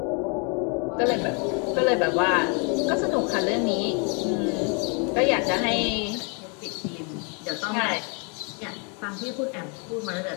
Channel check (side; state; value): right; quieter; 35.7 dB